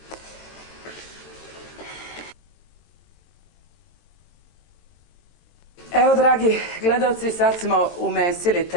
Evo, dragi gledalci, sad smo umesili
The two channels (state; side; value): late; right; 23 ms